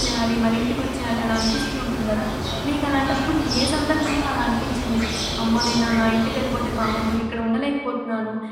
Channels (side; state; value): both; identical; correlation 1.00